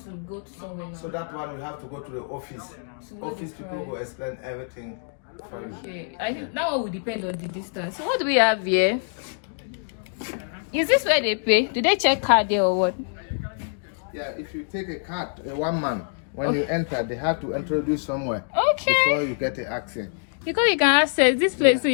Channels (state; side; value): silent; right; digital silence